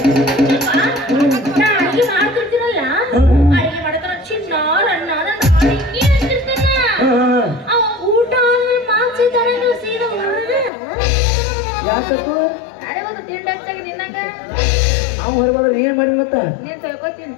ಅಡಿಗೆ ಮಾಡ್ತಿರ್ತೀರಲ್ಲ ಅಡಿಗೆ ಮಾಡತಾರ ಚಿನ್ನ ರನ್ನ ಹಿಂಗೆ ಅಂತಿರ್ತಾನ ಅವ ಊಟ ಆದ್ಮೇಲೆ ಮಾನ್ಸಿದ್ದಾನೆ ಸೀದಾ ಹೊರಗೆ ಯಾಕತ್ತು ಅರೆ ಒಂದು ತಿಂಡಿ ಹಚ್ಚಾಗಿ ನಿನ್ನಂಗ ನಾವು ಹೊರಗೋದ್ರೆ ಏನ್ ಮಾಡಿ ಮತ್ತ ನೀನ್ ತಿಳ್ಕೊತೀನಿ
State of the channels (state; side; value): drops out; right; at 10.7 s